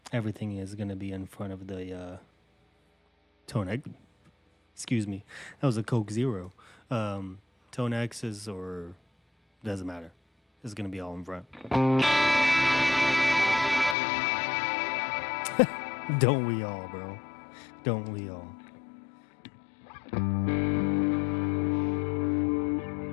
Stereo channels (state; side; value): drops out; right; at 14.0 s